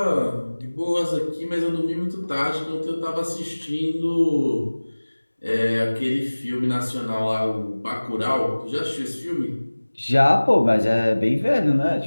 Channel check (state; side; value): inverted; both; correlation -1.00